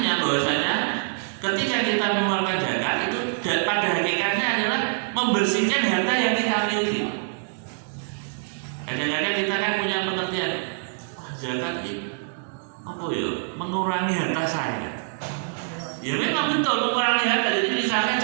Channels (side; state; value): left; silent; digital silence